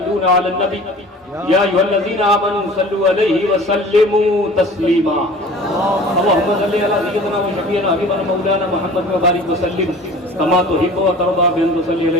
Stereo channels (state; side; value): normal; both; correlation 0.43